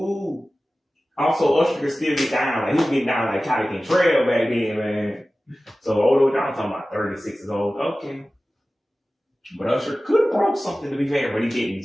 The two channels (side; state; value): both; normal; correlation 0.96